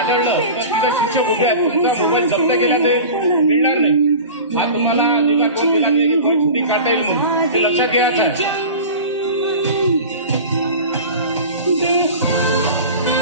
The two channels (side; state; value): both; inverted; correlation -0.35